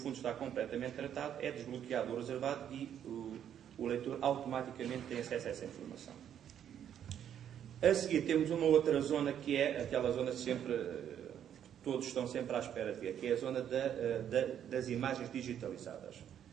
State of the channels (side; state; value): left; quieter; 9.6 dB